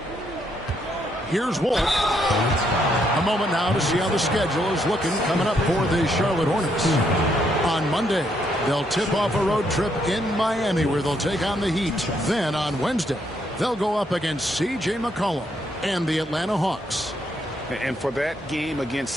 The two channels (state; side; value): normal; both; correlation 0.74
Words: Here's Wolf. A moment now to see how the schedule is looking coming up for the Charlotte Hornets. On Monday, they'll tip off a road trip in Miami where they'll take on the Heat. Then on Wednesday, they'll go up against C.J. McCollum and the Atlanta Hawks. And for that game against